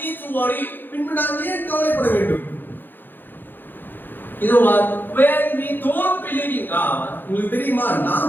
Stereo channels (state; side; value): late; right; 0.093 ms